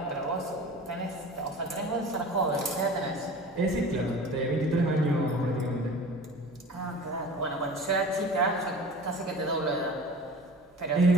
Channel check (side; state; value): both; normal; correlation 0.39